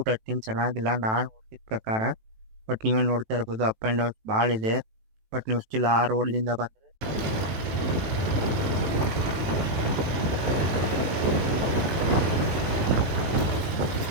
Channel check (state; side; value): late; left; 18 ms